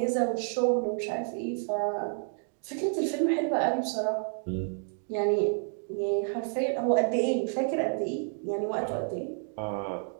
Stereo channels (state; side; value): silent; left; 57 dB below the other